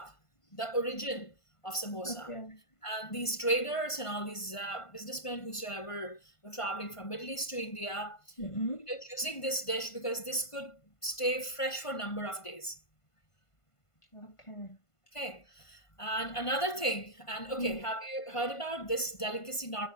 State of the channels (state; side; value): late; right; 1.5 ms